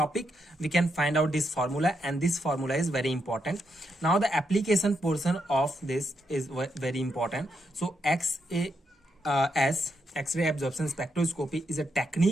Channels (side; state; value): both; normal; correlation 0.80